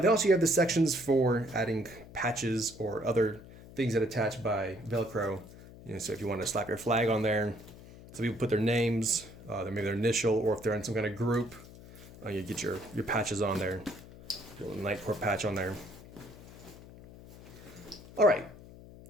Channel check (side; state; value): left; noise; hum, 18 dB below the sound